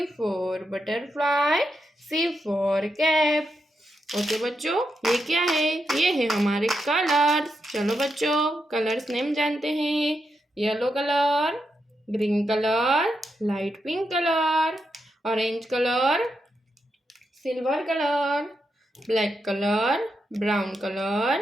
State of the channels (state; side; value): normal; both; correlation 0.84